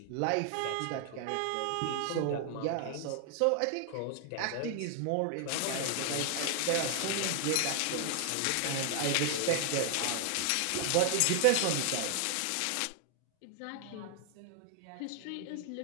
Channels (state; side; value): different; both; correlation 0.00